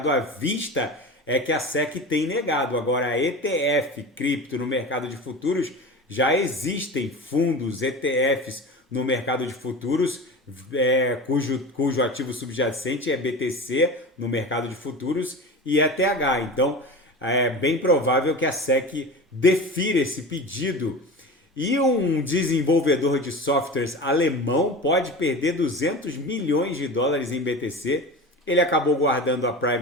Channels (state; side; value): normal; both; correlation 0.31